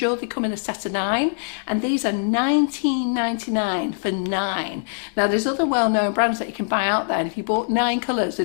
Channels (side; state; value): right; silent; digital silence